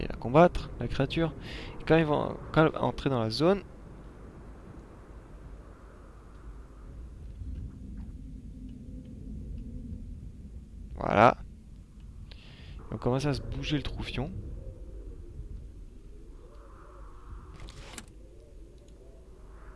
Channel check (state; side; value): identical; both; correlation 1.00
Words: la combattre, la créature. Et quand ils vont entrer dans la zone, voilà. On commence à se bouger le troufion.